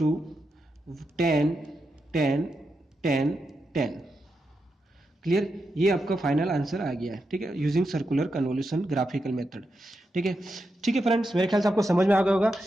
10 10 10 10। Clear, ये आपका फाइनल आंसर आ गया है। ठीक है, using circular convolution graphical method. ठीक है, ठीक है फ्रेंड्स, मेरे ख्याल से आपको समझ में आ गया होगा।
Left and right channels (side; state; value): both; normal; correlation 0.86